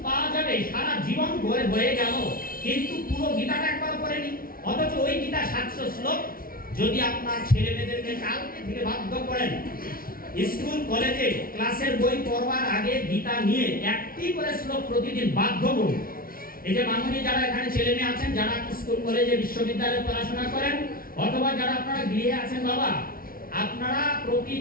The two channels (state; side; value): late; right; 0.43 ms